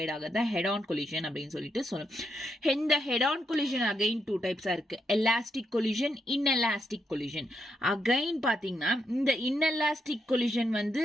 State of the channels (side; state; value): both; normal; correlation 0.80